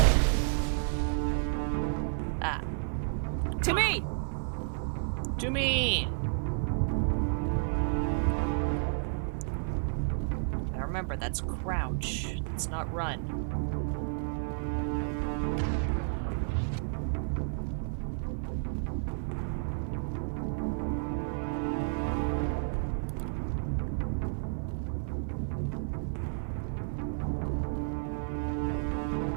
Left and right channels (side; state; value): left; silent; 57 dB below the other